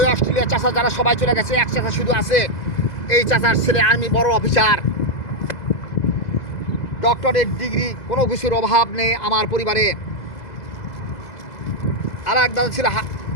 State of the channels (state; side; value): late; right; 2.0 ms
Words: অস্ট্রেলিয়া চাচা যারা সবাই চলে গেছে, এক চাচা শুধু আছে। এই চাচার ছেলে আর্মি বড় অফিসার, ডক্টরেট ডিগ্রি, কোনো কিছুর অভাব নেই আমার পরিবারে। আর এক দাদা ছিল